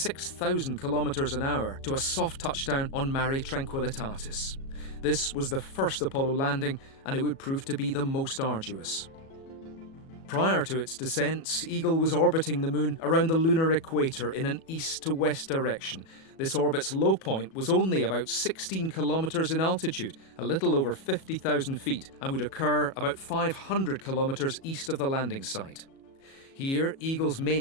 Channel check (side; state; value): right; late; 37 ms